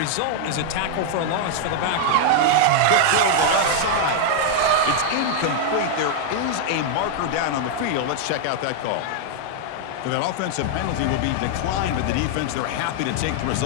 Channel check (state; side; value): different; both; correlation 0.00